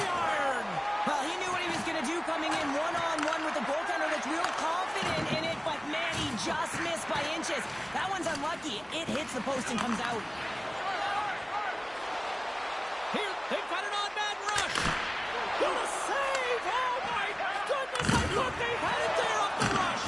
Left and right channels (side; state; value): right; noise; hum, 29 dB below the sound